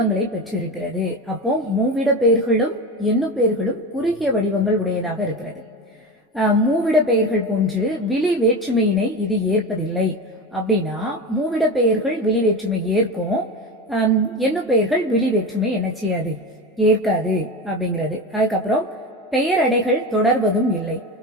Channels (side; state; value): both; normal; correlation 0.24